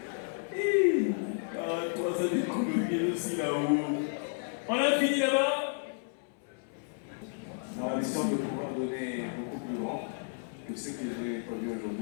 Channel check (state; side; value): silent; right; 56 dB below the other